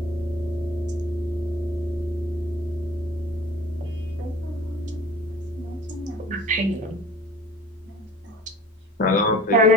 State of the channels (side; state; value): both; normal; correlation 0.44